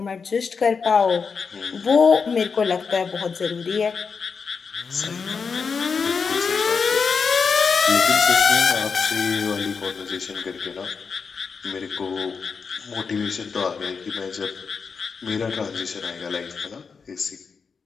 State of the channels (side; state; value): right; quieter; 5.5 dB